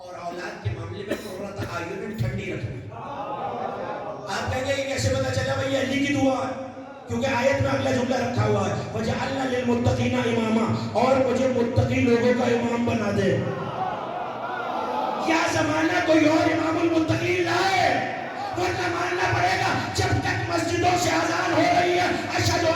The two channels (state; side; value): identical; both; correlation 1.00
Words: اولاد کے معاملے میں قرۃ اعین ٹھنڈی رکھنی. آپ کہیں گے یہ کیسے پتا چلا بھائی یہ علی کی دعا ہے؟ کیونکہ آیت میں اگلا جملہ رکھا ہوا ہے وَجَعَلْنَا لِلْمُتَّقِينَ إِمَامًا, اور مجھے متقی لوگوں کا امام بنا دے. کیا زمانہ کوئی اور امام المتقین لائے ورنہ ماننا پڑے گا جب تک مسجدوں سے اذان ہو رہی ہے اشہد